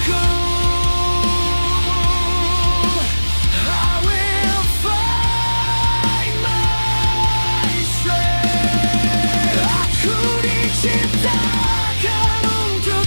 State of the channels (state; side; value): inverted; both; correlation -1.00